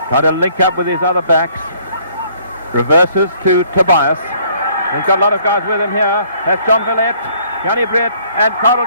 trying to link up with his other backs. Reverses to Tobias. He's got a lot of guys with him here. That's John Villette, Yanni Brett, and Carl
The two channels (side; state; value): both; inverted; correlation -0.61